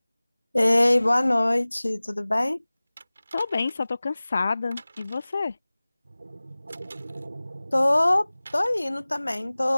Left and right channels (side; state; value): both; inverted; correlation -0.99